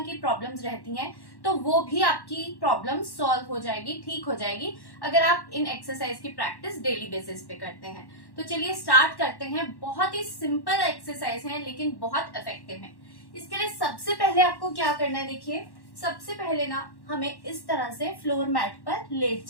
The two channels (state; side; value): late; right; 1.1 ms